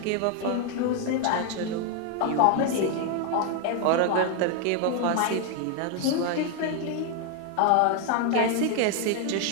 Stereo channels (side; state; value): both; different; correlation 0.01